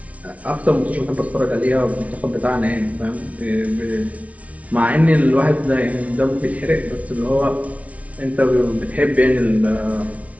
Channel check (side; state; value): left; late; 0.067 ms